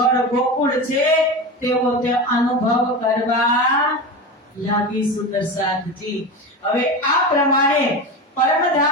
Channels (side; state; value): both; normal; correlation 0.24